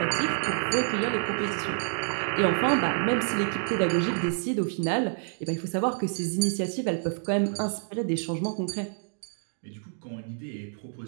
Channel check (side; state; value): left; silent; digital silence